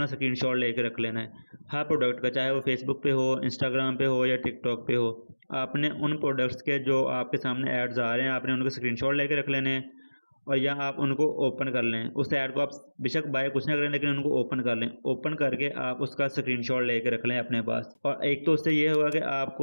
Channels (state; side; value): inverted; both; correlation -1.00